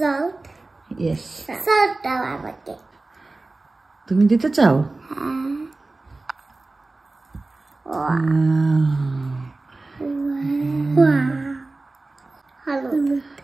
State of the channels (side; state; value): left; quieter; 3.2 dB